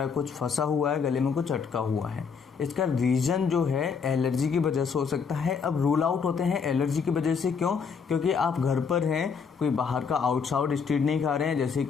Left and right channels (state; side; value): quieter; right; 6.0 dB